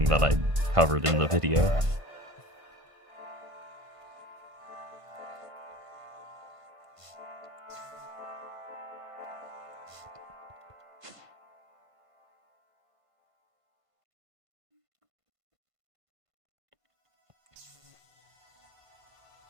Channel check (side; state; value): left; late; 1.5 ms